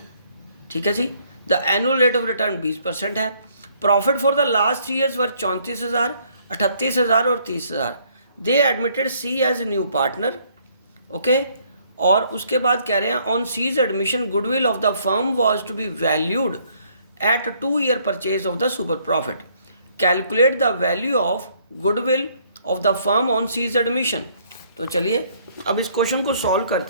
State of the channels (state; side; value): inverted; both; correlation -0.65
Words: ठीक है जी। The annual rate of return 20% है। Profit for the last 3 years were 34,000, 38,000 और 30,000। They admitted C as new partner. Okay. और उसके बाद कह रहे हैं on C's admission goodwill of the firm was to be valued at 2 year purchase of the super profit. Calculate the value of goodwill of the firm on C's admission. तो चलिए अब इस क्वेश्चन को सॉल्व